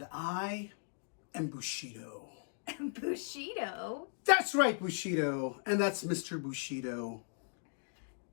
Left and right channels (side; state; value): right; silent; digital silence